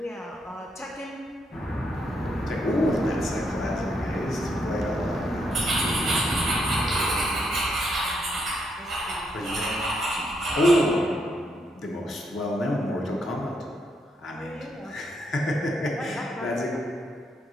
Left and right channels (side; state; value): both; normal; correlation 0.77